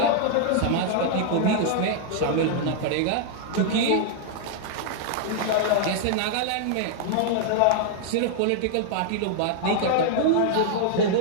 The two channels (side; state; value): both; different; correlation 0.00